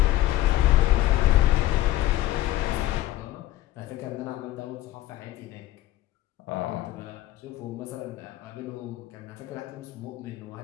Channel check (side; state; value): right; quieter; 15.2 dB